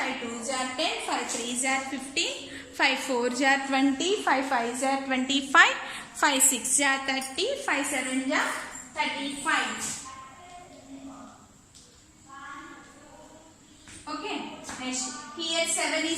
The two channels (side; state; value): both; identical; correlation 1.00